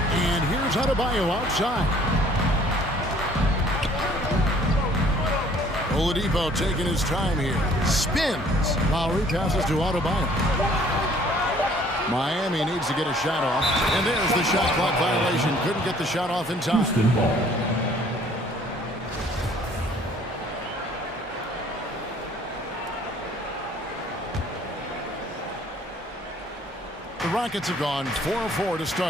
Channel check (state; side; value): normal; both; correlation 0.57